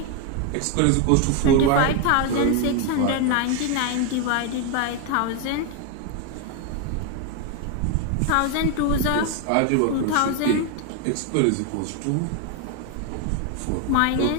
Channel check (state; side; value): different; both; correlation 0.01